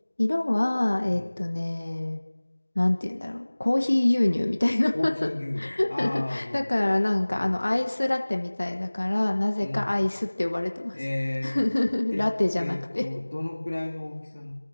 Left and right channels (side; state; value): both; inverted; correlation -1.00